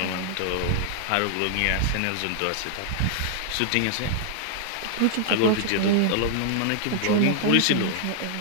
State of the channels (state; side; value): different; both; correlation -0.01